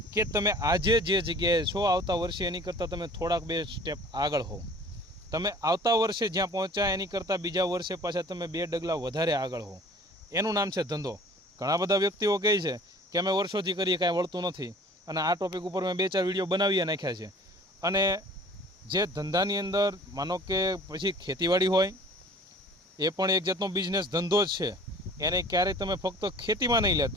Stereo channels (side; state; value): both; normal; correlation 0.48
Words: કે તમે આજે જે જગ્યાએ છો આવતા વર્ષે એની કરતાં તમે થોડાક 2 સ્ટેપ આગળ હો. તમે આવતા વર્ષે જ્યાં પહોંચ્યા એની કરતાં બીજા વર્ષે પાછા તમે 2 ડગલા વધારે આગળ હો. એનું નામ છે ધંધો. ઘણા બધા વ્યક્તિઓ કહે છે કે અમે વર્ષોથી કરીએ, કાંઈ વળતું નથી, અને આ ટોપિક ઉપર મેં 2-4 વિડીયો બનાવી નાખ્યા છે. અને જે ધંધાની અંદર માનો કે પછી ખેતીવાડી હોય, એ પણ એક જાતનો બિઝનેસ ધંધો જ છે. એને ક્યારેય તમે ફક્ત ખેતીમાં નહીં